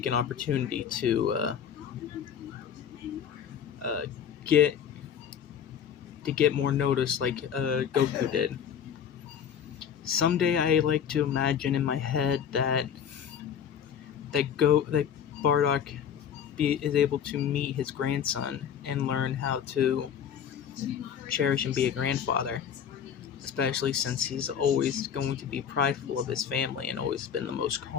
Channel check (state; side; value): quieter; right; 8.3 dB